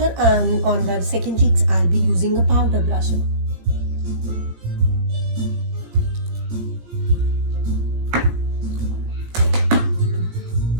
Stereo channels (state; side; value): late; left; 18 ms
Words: and on the second cheeks, I'll be using a powder blusher.